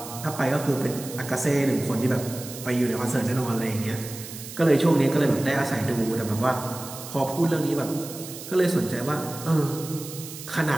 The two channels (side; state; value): right; noise; hiss, 12 dB below the sound